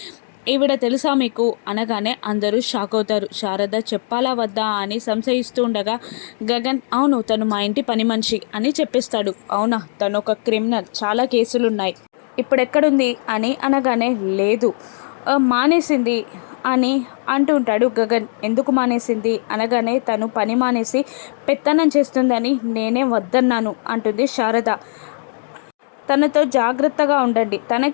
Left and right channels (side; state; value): right; silent; digital silence